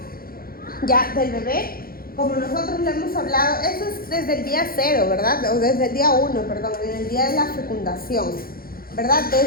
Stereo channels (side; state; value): right; late; 0.43 ms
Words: ya del bebé, como nosotros lo hemos hablado, eso es desde el día 0, ¿verdad? O desde el día 1, perdón, en el día de la fecundación, ¿verdad?